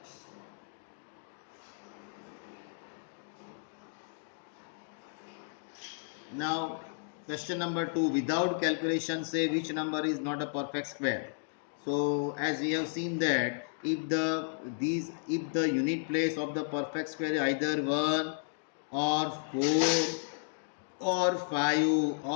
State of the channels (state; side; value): silent; right; digital silence